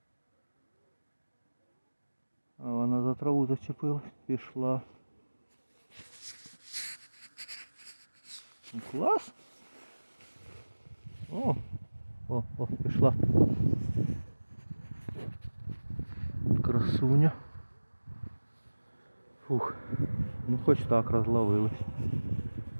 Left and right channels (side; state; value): both; inverted; correlation -1.00